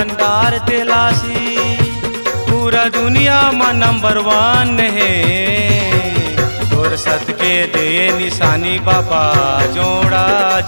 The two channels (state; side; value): inverted; both; correlation -1.00